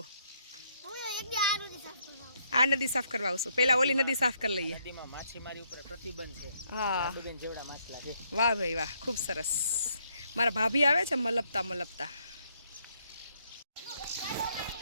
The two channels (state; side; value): inverted; both; correlation -0.73